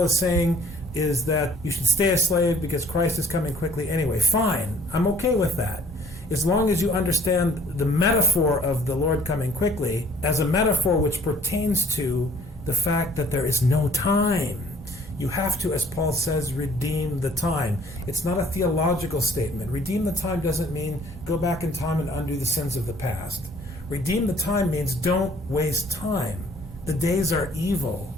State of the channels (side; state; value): both; normal; correlation 0.57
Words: is saying is that you should stay a slave because Christ is coming quickly anyway. Fine. I'm okay with that. As long as you understand the metaphor of the Lord coming quickly as a metaphor which pertains to the fact that there is no time. You have to, as Paul says, redeem the time. It's not a theological statement. Redeem the time doesn't mean go back in time and undo the sins of the past. Redeem the time means don't waste time. The days are evil.